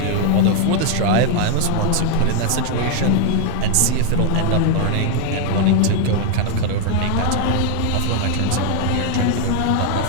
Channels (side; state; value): both; different; correlation 0.00